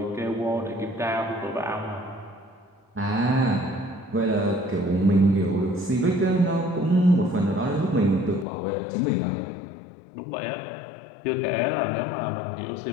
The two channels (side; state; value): right; drops out; at 8.5 s